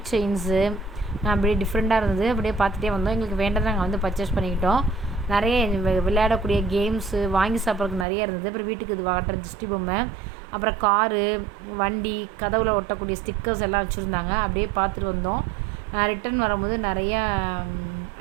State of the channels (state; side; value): drops out; left; at 8.1 s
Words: செயின்ஸு அப்படியே டிஃப்ரெண்ட்டாக இருந்தது. அப்படியே பார்த்துட்டே வந்தோம். எங்களுக்கு வேண்டதை நாங்கள் வந்து பர்ச்சேஸ் பண்ணிக்கிட்டோம். நிறைய விளையாடக்கூடிய கேம்ஸு வாங்கி சாப்பிட்றதுக்கு நிறைய இருந்தது. அப்புறம் வீட்டுக்கு இது வாட்டுற திருஷ்டி பொம்மை, அப்புறம் காரு, வண்டி, கதவுல ஒட்டக்கூடிய ஸ்டிக்கர்ஸ் எல்லாம் வச்சுருந்தாங்க. அப்படியே பார்த்துட்டு வந்தோம். ரிட்டன் வரும்போது நிறையா